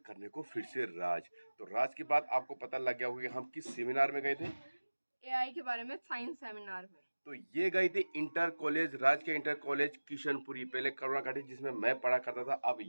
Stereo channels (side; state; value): both; inverted; correlation -1.00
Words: को फिर से राज। तो राज की बात आपको पता लग गया होगा कि हम किस सेमिनार में गए थे, एआई के बारे में साइंस सेमिनार में। तो ये गई थी इंटर कॉलेज, राज के इंटर कॉलेज किशनपुरी, पहले करुणा घाटी जिसमें मैं पढ़ा करता था, अब